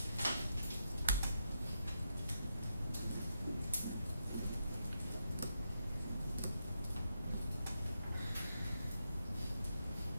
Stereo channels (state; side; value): inverted; both; correlation -0.83